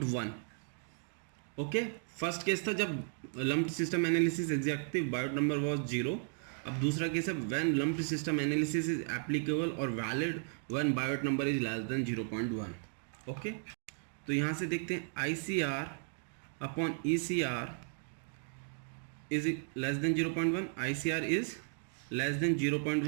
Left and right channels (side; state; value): left; silent; 54 dB below the other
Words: Okay, first case था जब lumped system analysis exactly Biot number was 0। अब दूसरा केस है when lumped system analysis is applicable और valid when Biot number is less than 0.1। Okay, तो यहाँ से देखते हैं ICR upon ECR is less than 0.1, ICR is less than